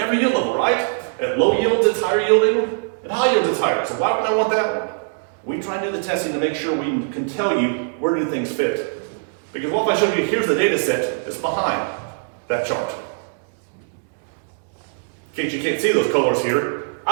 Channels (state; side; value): silent; left; digital silence